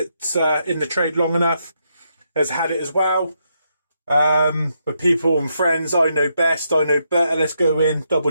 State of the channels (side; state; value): both; inverted; correlation -0.79